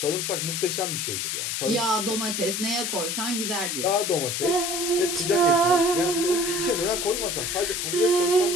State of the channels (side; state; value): left; noise; hiss, 2 dB below the sound